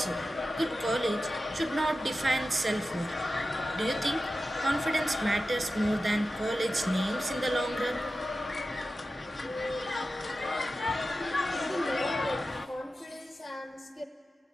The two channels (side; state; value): both; normal; correlation 0.93